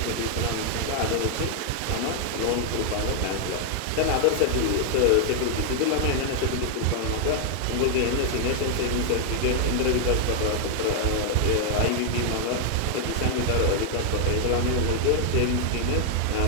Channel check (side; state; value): both; different; correlation 0.00